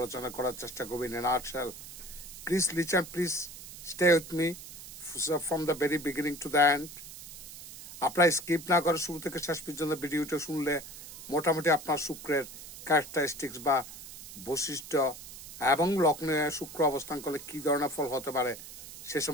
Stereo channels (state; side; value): noise; right; hiss, 14 dB below the sound